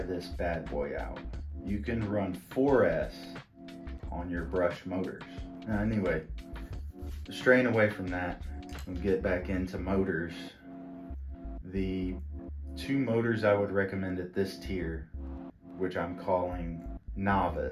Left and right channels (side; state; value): both; identical; correlation 1.00